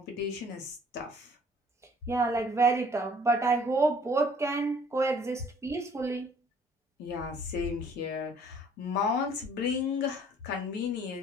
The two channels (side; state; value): both; normal; correlation 0.57